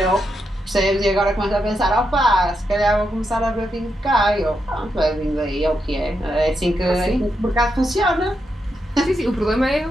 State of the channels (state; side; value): normal; both; correlation 0.83